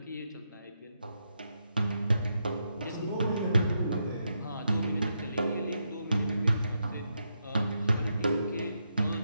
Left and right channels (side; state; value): both; inverted; correlation -0.82